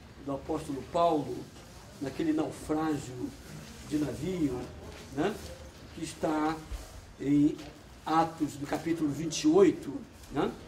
do apóstolo Paulo, naquele naufrágio de navio, né, que está em Atos do capítulo 28, né?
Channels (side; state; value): both; identical; correlation 1.00